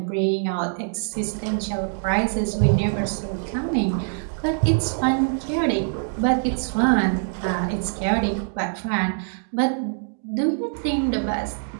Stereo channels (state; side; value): silent; left; digital silence